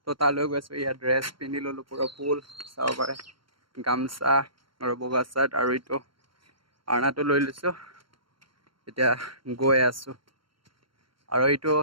তো তালৈ গৈ আছোঁ। ইয়াত ড্ৰেছ পিন্ধি ল'লোঁ, পুৰা ফুল চাব পাৰে, গামচা আৰু বগা চাৰ্ট আৰু এইটো আৰ্ণাটো লৈ লৈছোঁ। এতিয়া গৈ আছোঁ আৰু এইটো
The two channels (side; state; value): left; late; 0.73 ms